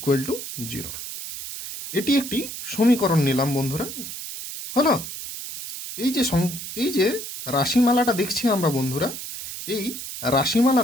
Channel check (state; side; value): noise; right; hiss, 8 dB below the sound